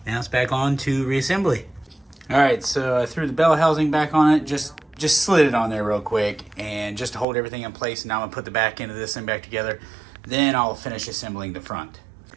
Now it's back on to reassembly. All right, so I threw the bell housing back on it, just slid it on there real quick, and just to hold everything in place. Now I'm gonna put the back end of this thing back together. Then I'll finish assembling the front.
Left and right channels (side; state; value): left; drops out; at 7.2 s